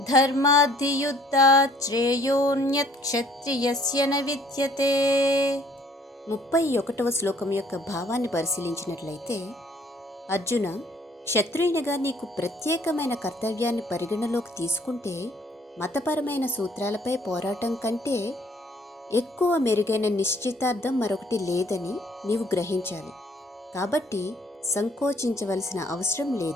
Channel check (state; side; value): normal; both; correlation 0.60